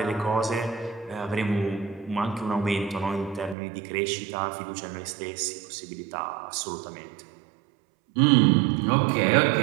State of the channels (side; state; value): left; drops out; at 3.6 s